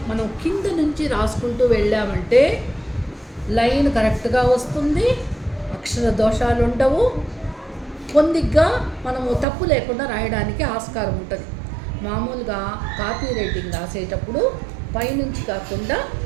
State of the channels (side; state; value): left; drops out; at 9.5 s